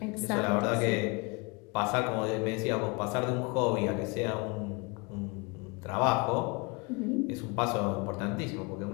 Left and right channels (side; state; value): right; quieter; 29.4 dB